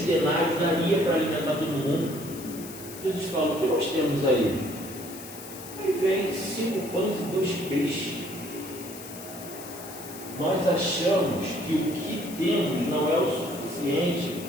denários daria para alimentar todo mundo. Jesus fala: o que nós temos aí? Aí vem 5 pães e 2 peixes. Nós achamos que o que temos não é o suficiente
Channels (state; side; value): noise; left; hiss, 14 dB below the sound